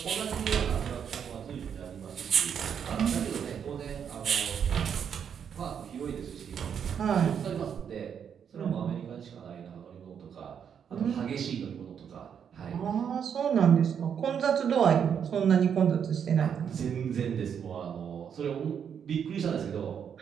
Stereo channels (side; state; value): left; quieter; 7.8 dB